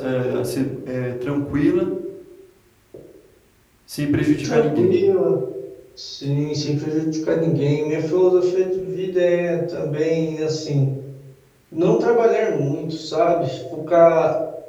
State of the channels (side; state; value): both; identical; correlation 1.00